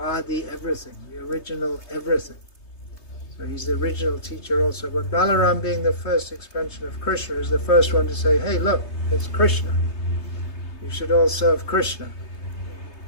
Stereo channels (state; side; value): late; right; 3.3 ms